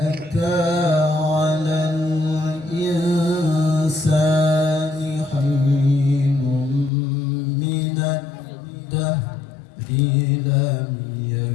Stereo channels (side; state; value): right; drops out; at 6.9 s